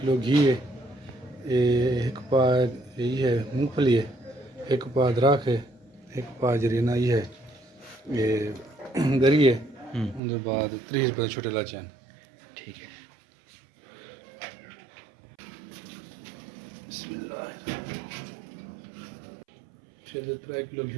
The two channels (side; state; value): left; drops out; at 10.2 s